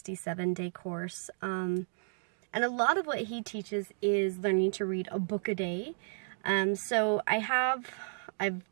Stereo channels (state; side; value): silent; left; digital silence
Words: course, and a lot of what he teaches is learning to read a book a day. So